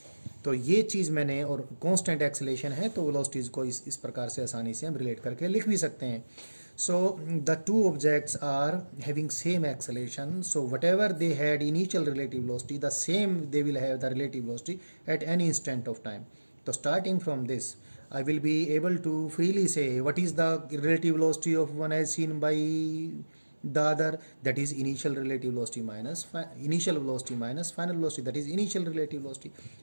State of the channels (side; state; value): both; inverted; correlation -1.00